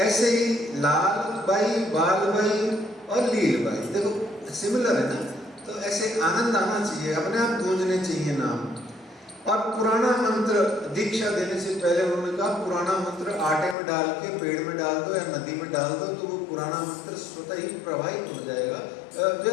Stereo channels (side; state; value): right; drops out; at 13.8 s